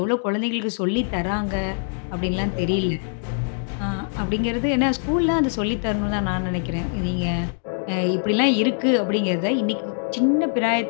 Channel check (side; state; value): right; silent; digital silence